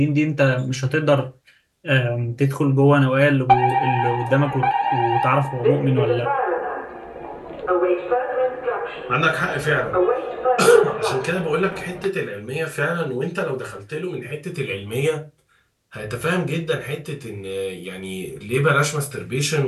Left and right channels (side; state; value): both; identical; correlation 1.00